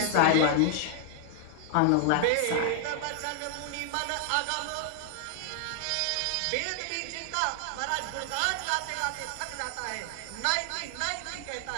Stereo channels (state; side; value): different; both; correlation 0.00